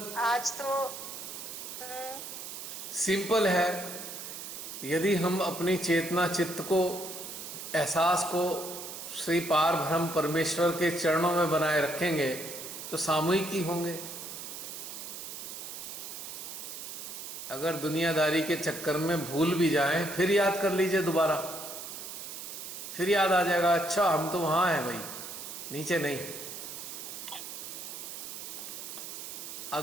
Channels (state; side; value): noise; right; hiss, 9 dB below the sound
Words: आज तो हम्म, सिंपल है। यदि हम अपनी चेतना चित्त को, एहसास को श्री पार ब्रह्म परमेश्वर के चरणों में बनाए रखेंगे तो सामूहिक ही होंगे। अगर दुनियादारी के चक्कर में भूल भी जाएं फिर याद कर लीजिए दोबारा, फिर याद आ जाएगा, अच्छा हम तो वहाँ हैं भाई, नीचे नहीं।